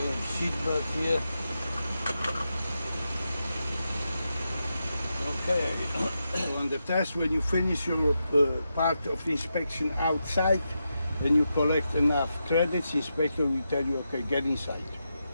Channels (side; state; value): both; inverted; correlation -0.87